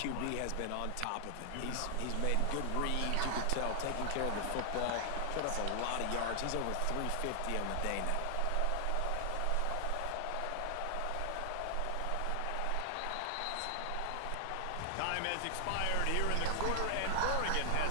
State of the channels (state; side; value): different; both; correlation 0.00